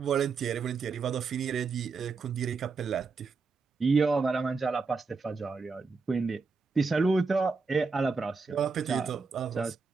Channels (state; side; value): quieter; left; 4.6 dB